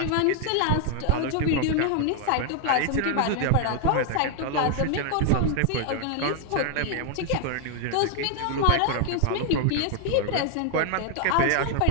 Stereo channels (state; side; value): different; both; correlation 0.00